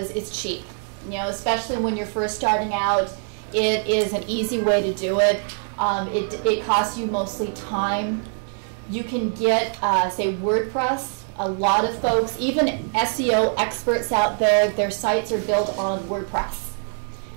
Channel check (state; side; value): silent; left; 63 dB below the other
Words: it's cheap. You know, especially when you're first starting out, it is an easy way to do it. It costs you mostly time. You can get, say, WordPress. A lot of folks, even SEO experts out there, their sites are built on WordPress.